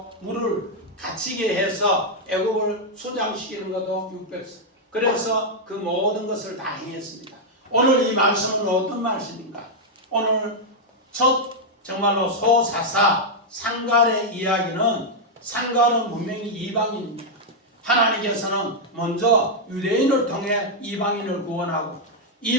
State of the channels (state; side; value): normal; both; correlation -0.03